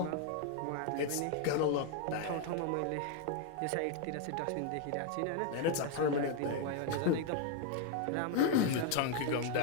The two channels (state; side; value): different; both; correlation 0.01